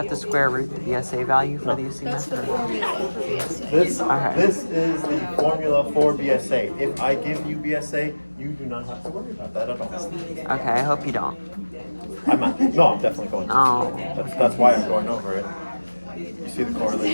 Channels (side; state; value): both; inverted; correlation -1.00